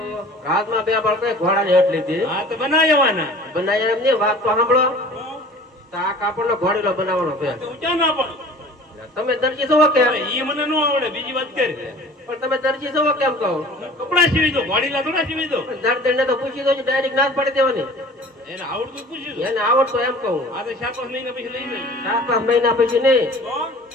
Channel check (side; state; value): both; normal; correlation 0.45